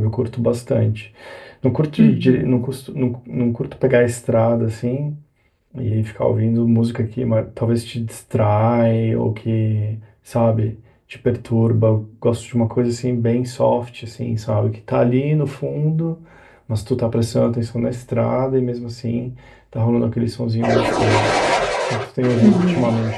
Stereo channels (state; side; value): identical; both; correlation 1.00